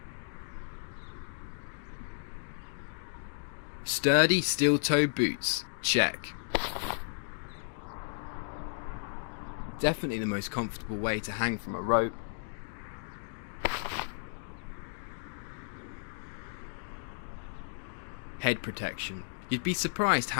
Sturdy steel-toe boots, check. Definitely the most comfortable way to hang from a rope. Head protection. You'd be surprised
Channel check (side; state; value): right; silent; digital silence